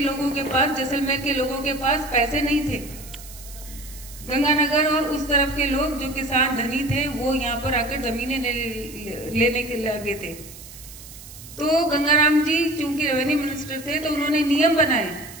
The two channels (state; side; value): noise; right; hiss, 17 dB below the sound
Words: के पास, जैसलमेर के लोगों के पास पैसे नहीं थे। गंगानगर और उस तरफ के लोग जो किसान धनी थे वो यहाँ पर आकर जमीनें लेने के लगे थे। तो गंगाराम जी चूंकि रेवेन्यू मिनिस्टर थे तो उन्होंने नियम बनाए।